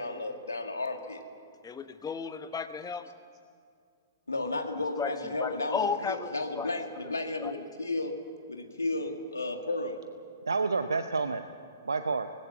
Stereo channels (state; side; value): inverted; both; correlation -0.53